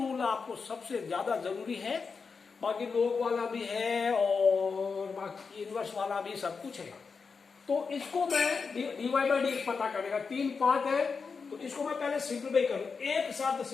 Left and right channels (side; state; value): right; quieter; 5.1 dB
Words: आपको सबसे ज्यादा जरूरी है, बाकी लोग वाला भी है और बाकी इनवर्स वाला भी सब कुछ है। तो इसको मैं डीवाई बाई डी पता करेगा, 3 पार्ट है, तो इसको मैं पहले सिंप्लीफाई करूं। एक साथ